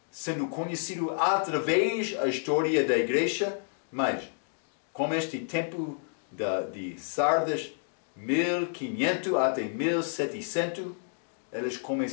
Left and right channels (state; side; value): silent; right; digital silence